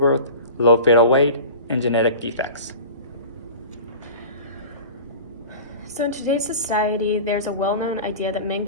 low fetal weight, and genetic defects. So in today's society, there's a well-known idea that men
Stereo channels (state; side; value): inverted; both; correlation -0.36